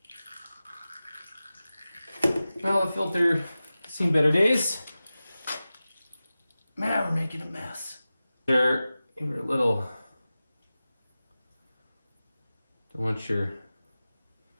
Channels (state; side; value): inverted; both; correlation -0.95